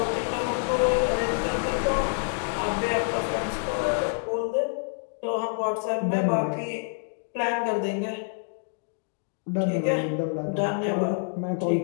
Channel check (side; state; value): right; silent; digital silence